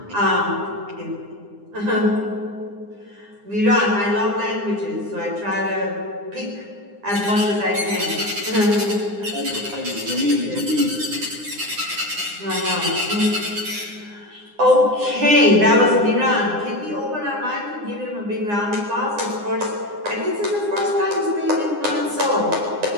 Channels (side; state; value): left; late; 9.8 ms